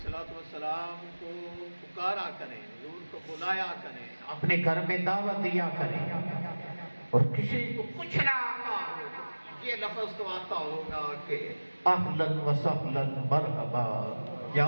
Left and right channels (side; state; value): both; inverted; correlation -1.00